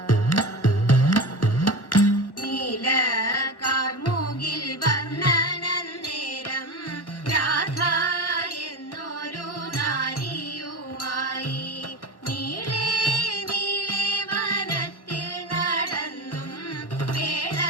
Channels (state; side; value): late; right; 1.4 ms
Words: നീല കാർമുകിൽ വർണ്ണനന്നേരം രാധ എന്നൊരു നാരിയുമായി നീളെ നീളെ വനത്തിൽ നടന്നും